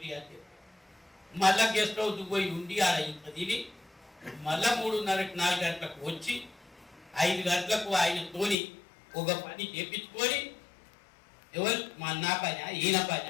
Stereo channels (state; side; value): drops out; right; at 8.6 s